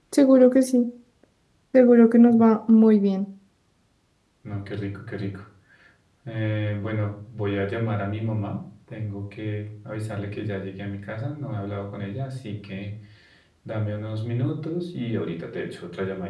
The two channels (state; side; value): identical; both; correlation 1.00